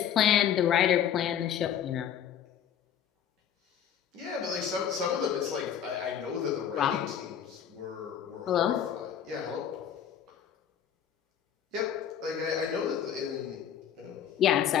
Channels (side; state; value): right; quieter; 9.2 dB